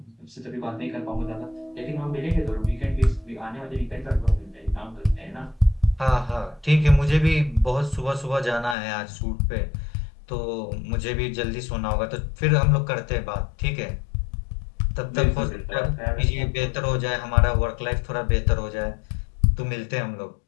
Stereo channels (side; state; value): right; drops out; at 8.8 s